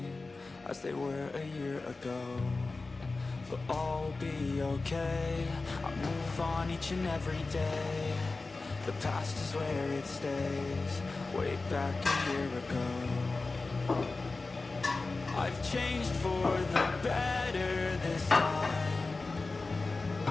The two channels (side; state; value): right; quieter; 3.6 dB